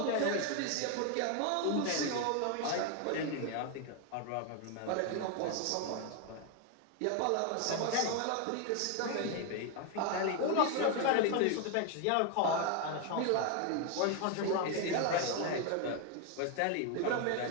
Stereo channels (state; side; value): different; both; correlation 0.01